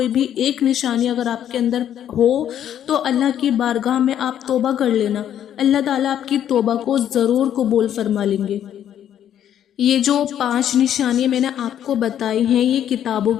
بھی ایک نشانی اگر آپ کے اندر ہو تو اللہ کی بارگاہ میں آپ توبہ کر لینا، اللہ تعالیٰ آپ کی توبہ کو ضرور قبول فرما لیں گے۔ یہ جو 5 نشانیاں میں نے آپ کو بتائی ہیں یہ کتابوں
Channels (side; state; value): right; quieter; 10.3 dB